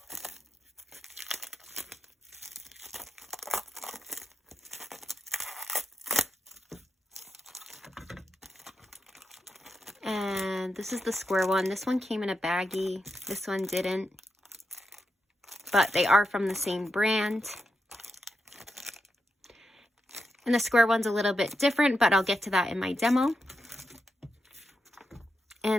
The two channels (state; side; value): normal; both; correlation 0.87